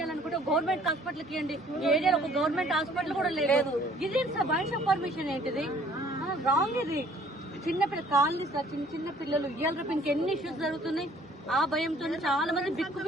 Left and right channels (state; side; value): normal; both; correlation 0.57